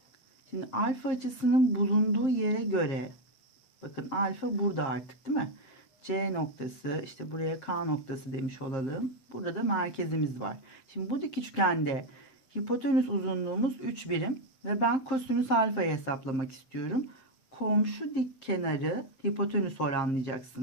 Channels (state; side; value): late; right; 7.6 ms